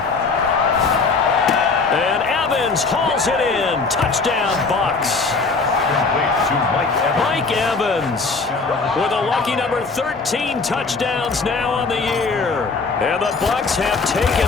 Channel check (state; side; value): quieter; right; 4.2 dB